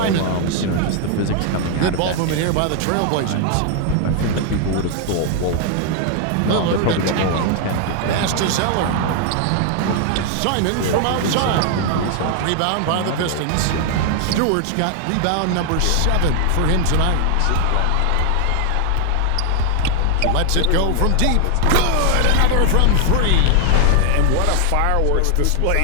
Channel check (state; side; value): different; both; correlation 0.00